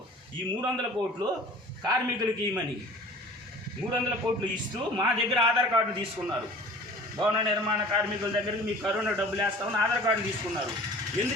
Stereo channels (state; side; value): normal; both; correlation 0.45